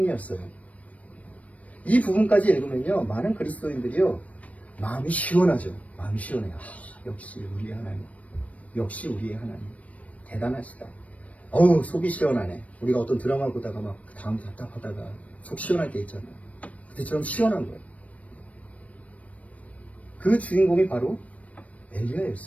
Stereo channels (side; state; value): right; late; 0.067 ms